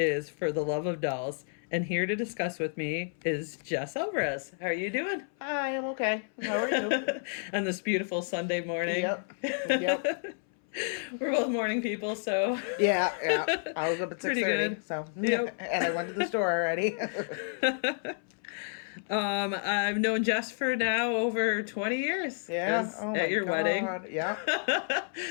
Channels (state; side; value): silent; right; 58 dB below the other